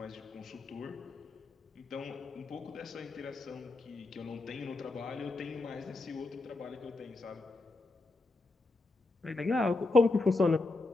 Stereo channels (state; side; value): quieter; right; 3.3 dB